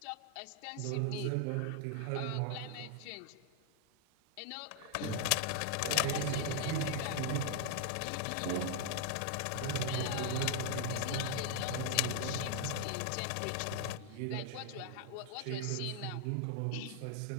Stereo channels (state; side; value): different; both; correlation 0.00